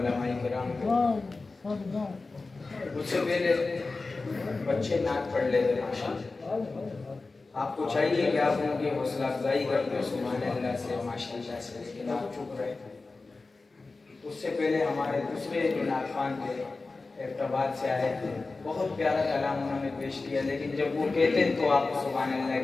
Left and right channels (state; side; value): quieter; right; 3.7 dB